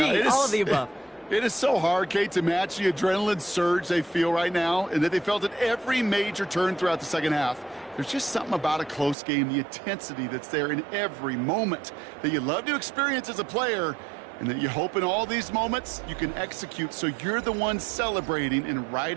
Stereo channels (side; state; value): left; drops out; at 9.2 s